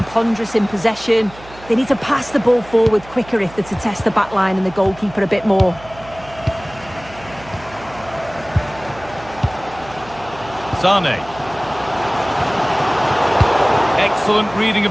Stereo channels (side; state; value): right; noise; hum, 19 dB below the sound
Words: ponderous in possession. They need to pass the ball forward quicker if they're to test the back line and the goalkeeper a bit more. Sané. Excellent reading